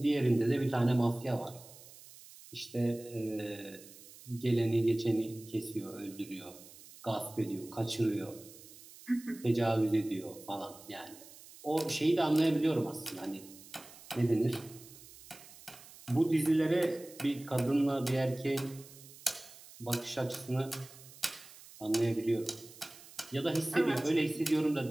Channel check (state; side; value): noise; right; hiss, 19 dB below the sound